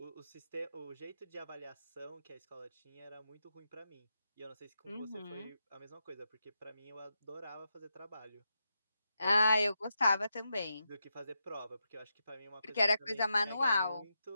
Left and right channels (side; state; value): both; inverted; correlation -0.86